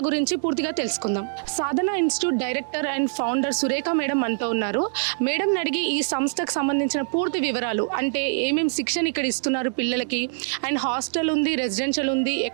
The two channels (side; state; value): left; silent; digital silence